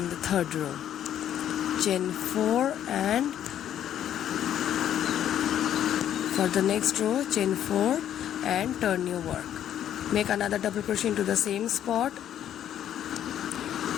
the third row. Chain 4 and for the next row, chain 4 and turn your work. Make another double crochet into the same spot.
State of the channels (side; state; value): right; quieter; 10.6 dB